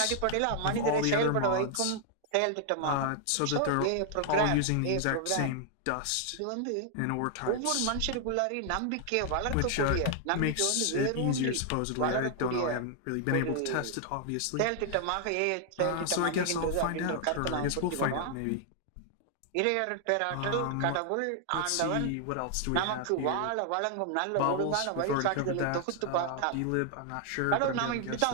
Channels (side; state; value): both; different; correlation 0.00